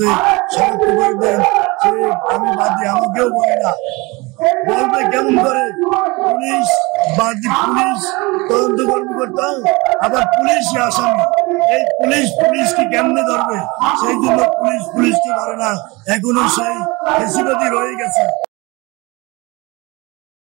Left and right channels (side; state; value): left; quieter; 24.7 dB